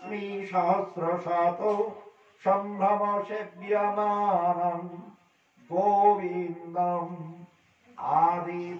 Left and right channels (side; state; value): both; identical; correlation 1.00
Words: সহস্র শত সম্ভ্রম সেব্যমানম গোবিন্দম আদি